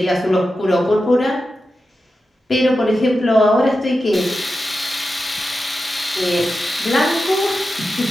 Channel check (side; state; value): both; normal; correlation 0.91